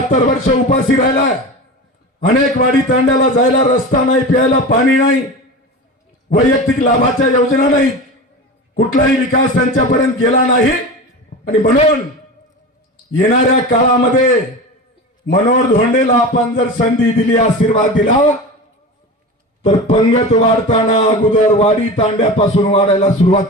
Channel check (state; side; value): normal; both; correlation 0.29